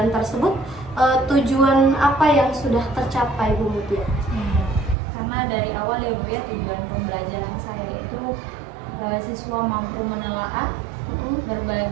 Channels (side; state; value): left; drops out; at 5.0 s